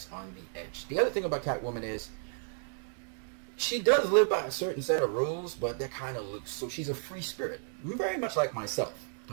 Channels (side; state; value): left; silent; 56 dB below the other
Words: on the edge. The other thing about Catwoman is she does live by a certain set of rules, but they're kind of loose. So she's a free spirit, very much like myself.